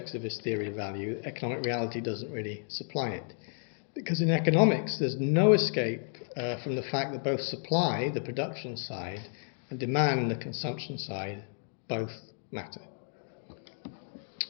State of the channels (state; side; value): silent; right; 56 dB below the other